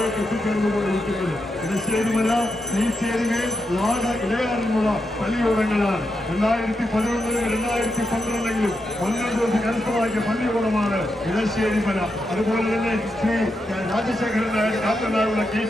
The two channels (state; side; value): normal; both; correlation 0.85